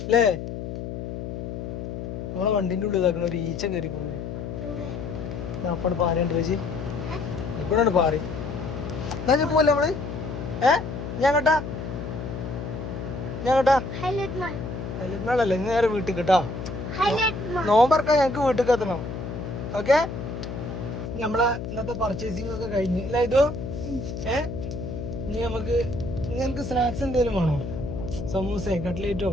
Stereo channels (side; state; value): left; noise; hum, 6 dB below the sound